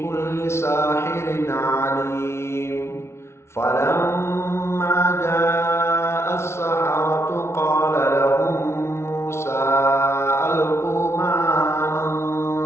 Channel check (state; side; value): late; right; 0.13 ms